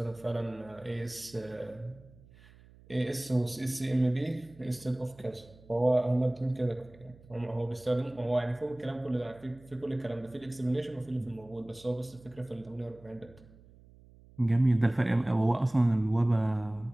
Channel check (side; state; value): right; noise; hum, 24 dB below the sound